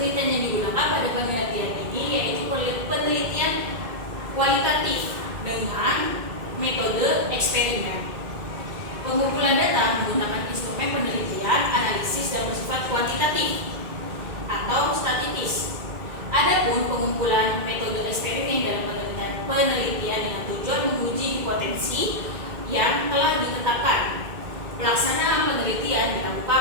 yang digunakan pada penelitian ini yaitu penelitian kualitatif dengan metode eksperimen. Pengumpulan data menggunakan instrumen penelitian, analisis dan bersifat kuantitatif atau statistis. Adapun pengumpulan metode eksperimen dalam penelitian dengan tujuan menguji hipotesis yang telah ditetapkan. Pelaksanaan penelitian dilakukan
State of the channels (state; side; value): late; left; 2.1 ms